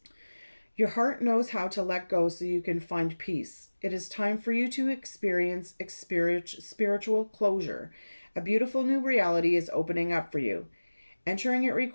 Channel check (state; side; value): inverted; both; correlation -1.00